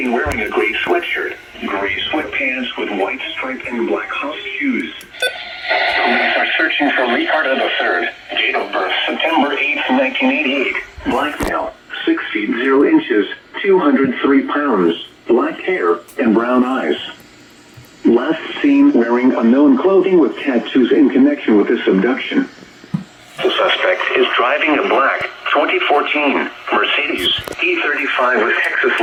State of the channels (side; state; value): both; identical; correlation 1.00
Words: wearing a gray sweatshirt, gray sweatpants with white stripe and black house shoes. Police are searching for Ricardo III. Date of birth, September 8th, 1988. Black male, 6 feet 0 inches, 203 pounds, black hair, and brown eyes. Last seen wearing unknown clothing with tattoos in connection with this abduction. The suspect is driving a black 2014 Mercedes E35 with Texas